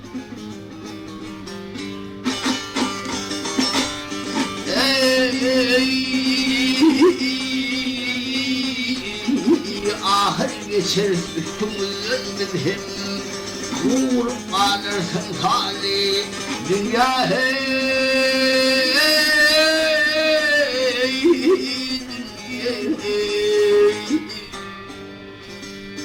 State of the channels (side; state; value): both; identical; correlation 1.00